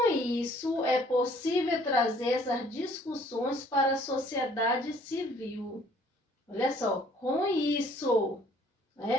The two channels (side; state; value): both; normal; correlation 0.58